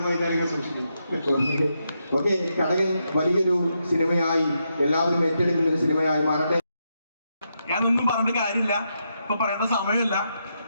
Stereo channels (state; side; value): inverted; both; correlation -0.83